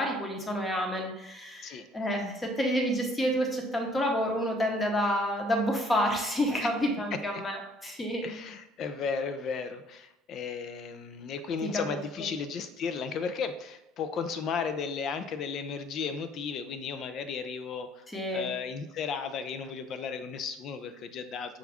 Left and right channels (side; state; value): both; normal; correlation 0.59